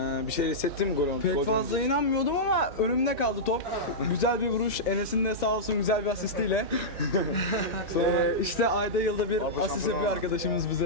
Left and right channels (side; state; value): both; normal; correlation -0.11